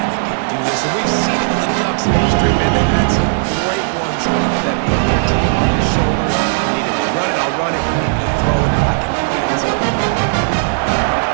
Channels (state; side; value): silent; left; 59 dB below the other